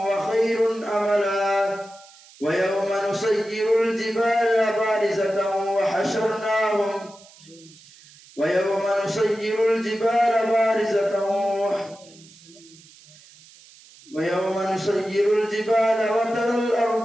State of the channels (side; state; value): right; noise; hiss, 24 dB below the sound